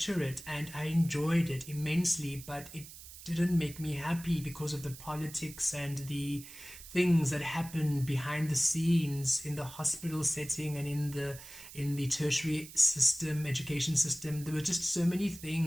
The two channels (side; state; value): right; noise; hiss, 15 dB below the sound